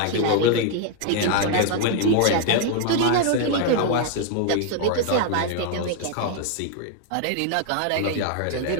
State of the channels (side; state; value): both; different; correlation 0.00